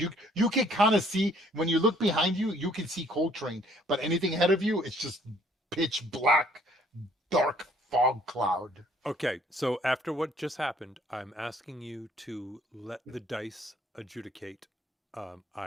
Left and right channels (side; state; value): both; normal; correlation 0.61